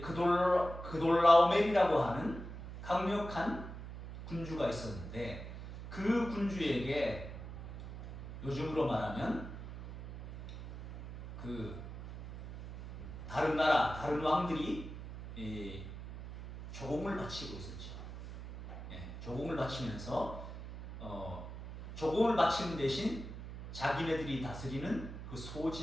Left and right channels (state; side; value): noise; right; hum, 10 dB below the sound